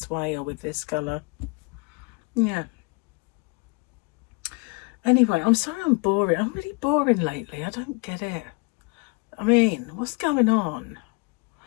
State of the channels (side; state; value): right; quieter; 29.9 dB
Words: way or with this colour. Yeah. Anyway, I'm sorry I'm boring. I'm really boring lately. I don't get it. I mean, what's going on?